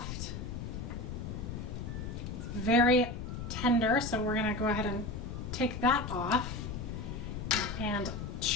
It's very tender, so we're gonna go ahead and take that off and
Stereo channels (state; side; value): noise; left; rumble, 6 dB below the sound